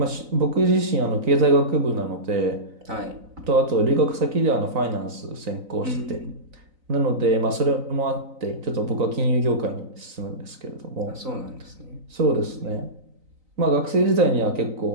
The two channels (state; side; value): late; left; 3.9 ms